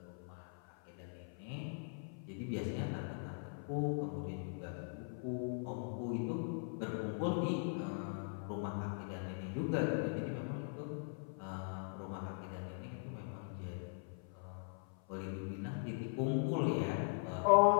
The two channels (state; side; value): silent; right; 51 dB below the other